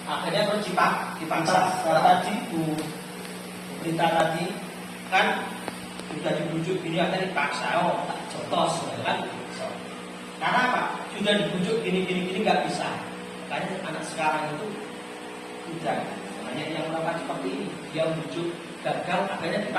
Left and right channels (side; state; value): both; identical; correlation 1.00